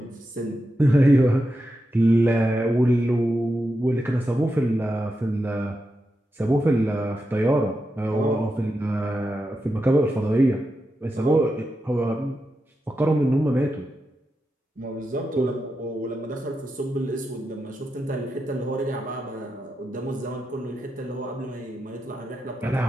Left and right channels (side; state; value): both; normal; correlation 0.88